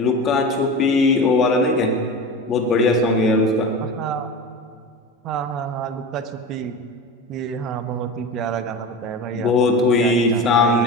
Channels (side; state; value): both; normal; correlation 0.29